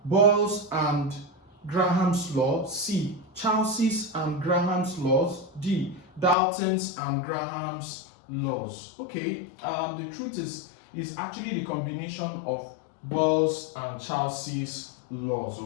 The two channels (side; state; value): right; drops out; at 6.4 s